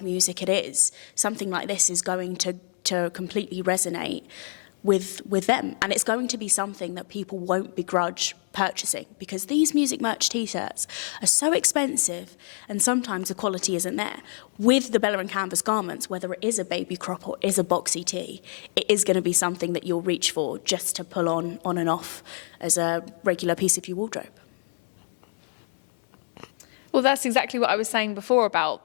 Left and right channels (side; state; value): right; silent; 60 dB below the other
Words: music it is, something like this is going to completely resonate with them, and it's going to be something that people won't begrudge purchasing, because these music merch t-shirts are so expensive and sometimes the quality isn't there. With the Bella and Canvas garments, whether it is a baby crop or is a boxy tee, it is going to be something that you'll reach for just to pull on and off as a regular piece of your wardrobe. Well, that's exactly what I was saying before